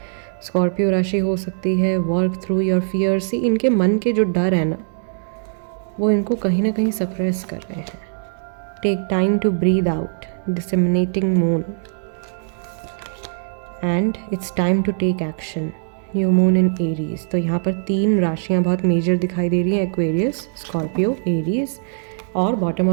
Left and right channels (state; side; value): silent; left; digital silence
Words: स्कॉर्पियो राशि हो सकती है। Work through your fear. See इनके मन के जो डर है ना वो इनको कहीं ना कहीं सप्रेस कर रहे हैं। Take time to breathe out, disseminating moon, and it's time to take action, new moon in Aries. तो यहाँ पर 3 राशियाँ बहुत मेजर दिखाई दे रही हैं, एक्वेरियस, स्कॉर्पियो, एरीज, और bottom